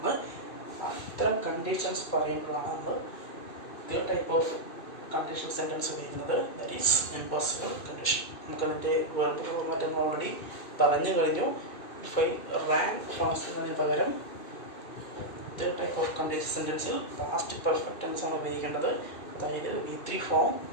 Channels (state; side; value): late; right; 2.6 ms